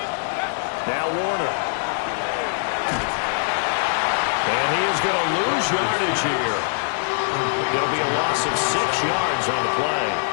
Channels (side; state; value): right; silent; 64 dB below the other